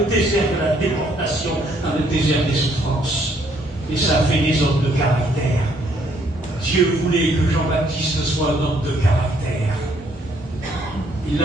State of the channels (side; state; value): both; normal; correlation 0.67